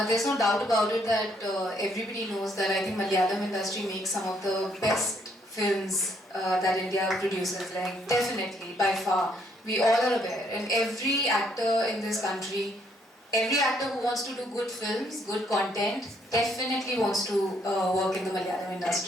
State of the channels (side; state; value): both; normal; correlation 0.70